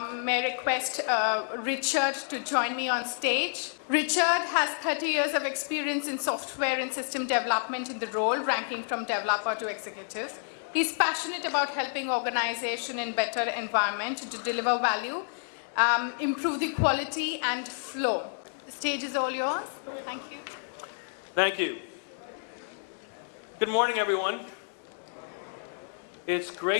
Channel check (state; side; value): silent; right; 58 dB below the other